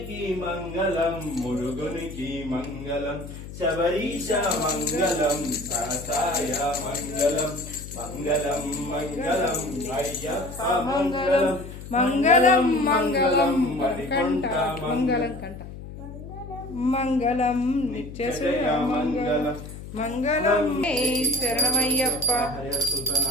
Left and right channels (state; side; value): noise; left; hum, 12 dB below the sound